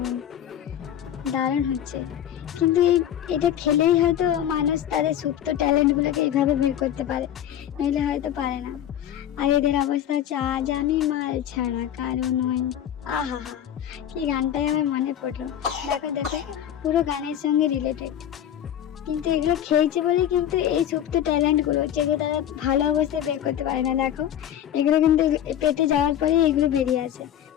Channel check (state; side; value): quieter; right; 10.6 dB